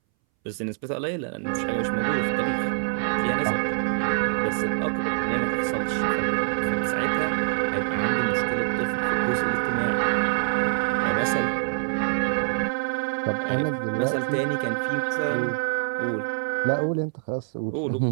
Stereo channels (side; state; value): left; silent; 62 dB below the other